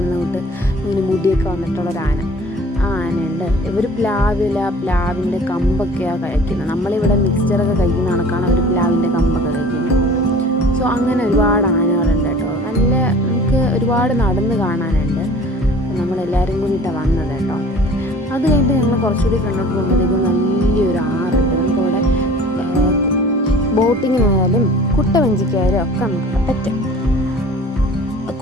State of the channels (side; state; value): both; normal; correlation 0.46